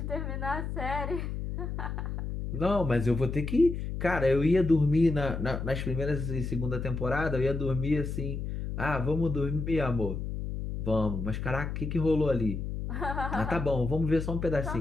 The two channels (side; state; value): left; noise; hum, 4 dB below the sound